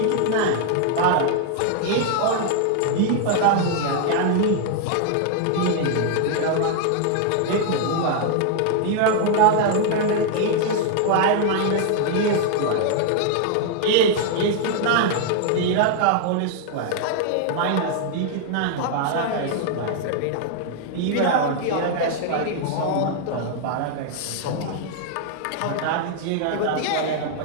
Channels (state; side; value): different; both; correlation 0.00